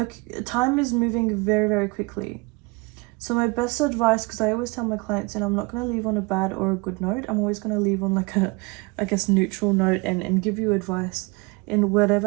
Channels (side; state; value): left; quieter; 26.6 dB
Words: Time is moving very, very quickly. So my best advice, because I always tell my clients, and I'm not going to leave on a bad or a good note. I'm always going to leave on like a, I guess, neutral note and give you advice in whatever